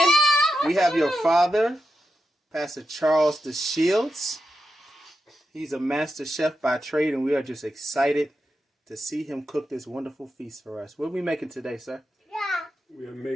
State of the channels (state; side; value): normal; both; correlation 0.88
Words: We have your father, Pastor Charles DeShields. He's a master chef by trade, and we are just excited to see him cook this wonderful feast for us. What are we making today, sir? We are